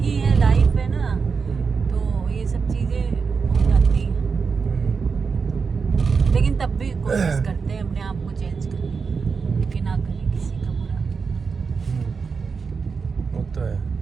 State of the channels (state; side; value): quieter; left; 5.3 dB